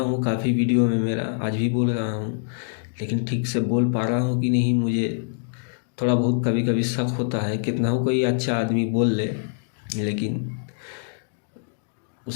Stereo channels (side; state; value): right; silent; digital silence